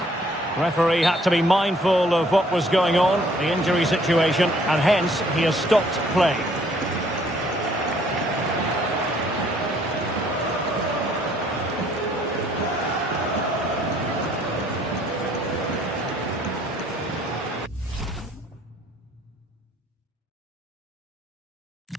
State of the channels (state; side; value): normal; both; correlation 0.62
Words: Referee had to be mindful of what was going on, the injury situation, and hence he has stopped play.